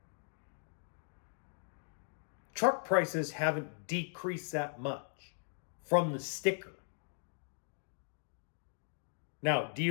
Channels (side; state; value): right; silent; digital silence